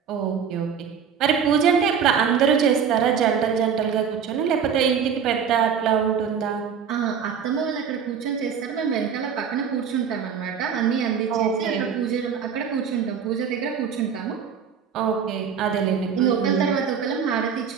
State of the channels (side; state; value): left; quieter; 7.1 dB